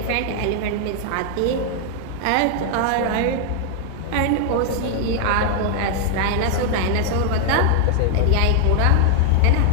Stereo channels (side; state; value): both; different; correlation 0.00